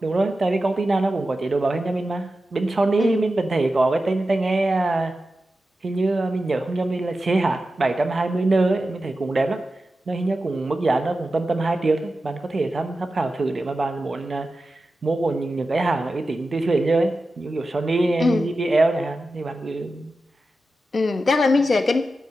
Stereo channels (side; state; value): both; normal; correlation 0.92